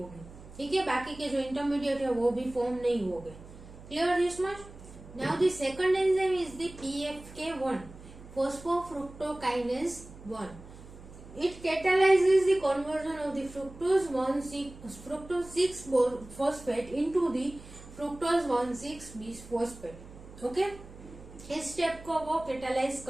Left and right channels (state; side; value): noise; right; hum, 18 dB below the sound